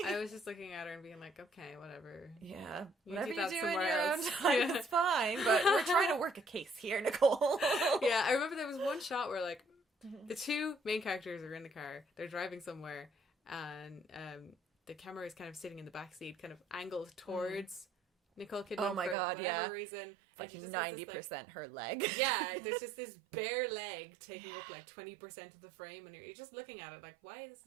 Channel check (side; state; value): left; drops out; at 19.2 s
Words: I was just looking at her and being like, okay, whatever. Yeah. Whatever you do in your own time, it's fine. But we're trying to work a case here, Nicole. Yeah, I remember there was one shot where, like, the two main characters are in the car. They're driving somewhere, and the camera is kind of sitting in the backseat, kind of angled towards Nicole Kidman for whatever reason. And she just 90% her leg. Yeah, there's just this bare leg taking up like 20% of the frame, and you're just looking at it like, why is